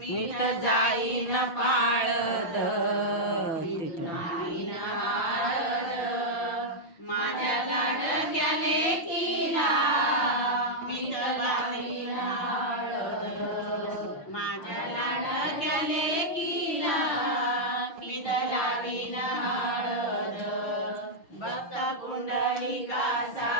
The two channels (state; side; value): late; right; 6.1 ms